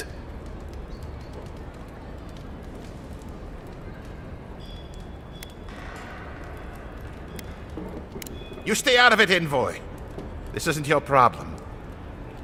You stay out of it, Envoy. This isn't your problem.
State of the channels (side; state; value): both; identical; correlation 1.00